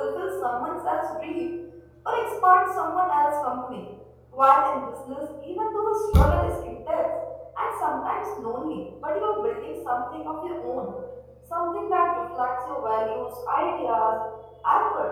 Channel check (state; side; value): identical; both; correlation 1.00